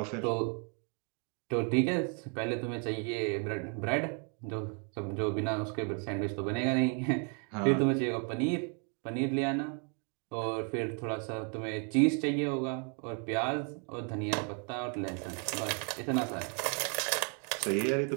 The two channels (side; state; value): left; quieter; 39.1 dB